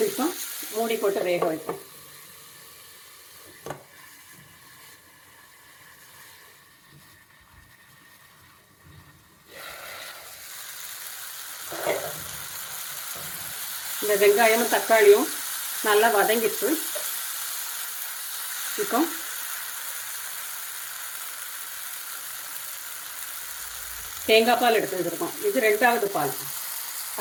நிமிஷம் மூடி போட்டு வேக வைப்போம். இந்த வெங்காயமும் தக்காளியும் நல்லா வதங்கிட்டு இப்போ தேங்காய் பால் எடுத்து வச்சுருக்கோம். இது 2வது பால்,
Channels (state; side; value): identical; both; correlation 1.00